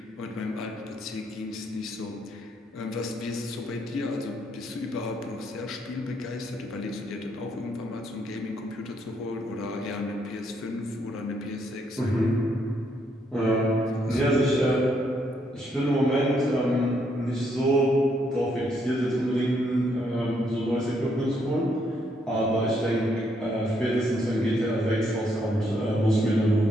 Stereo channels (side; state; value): both; normal; correlation 0.73